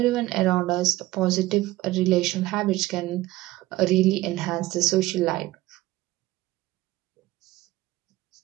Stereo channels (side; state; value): left; quieter; 17.5 dB